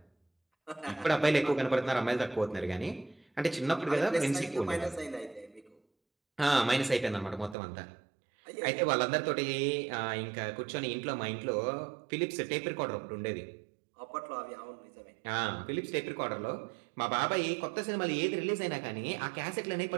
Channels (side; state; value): left; drops out; at 7.6 s